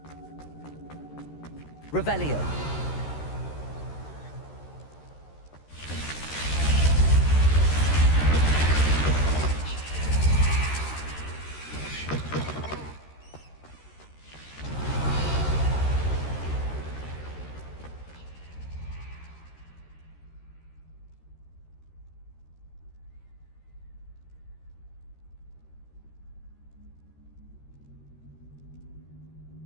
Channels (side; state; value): right; late; 13 ms